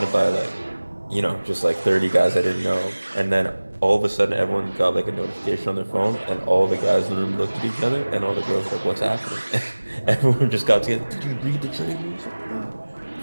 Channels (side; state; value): both; inverted; correlation -1.00